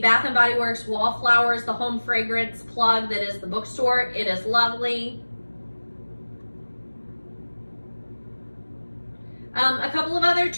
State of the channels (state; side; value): inverted; both; correlation -1.00